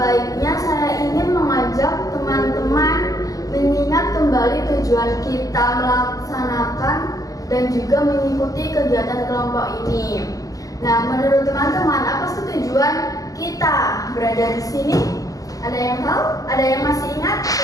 saya ingin mengajak teman-teman mengingat kembali tujuan kita melaksanakan dan juga mengikuti kegiatan kelompok ini. Nah, menurut teman-teman, apa sih tujuan kita berada di sini? Ada yang tahu? Ada yang masih ingat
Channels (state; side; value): late; right; 0.17 ms